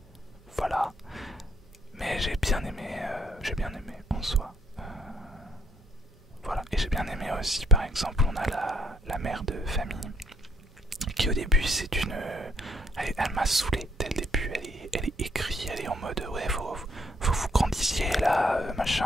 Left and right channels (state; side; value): normal; both; correlation 0.69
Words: Voilà. Mais j'ai bien aimé en soi. Voilà. Et j'ai bien aimé aussi, par exemple, on a la mère de famille qui au début c'est une... elle m'a saoulé dès le début, elle est écrite, elle est en mode ouais faut vous grandissiez là,